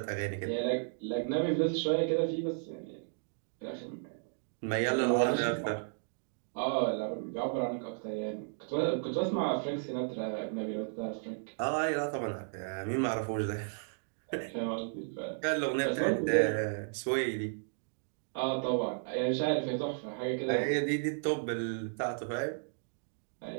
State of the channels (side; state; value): left; silent; digital silence